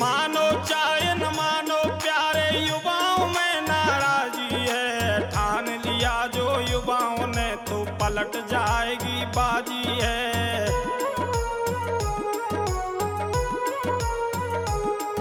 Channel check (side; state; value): both; identical; correlation 1.00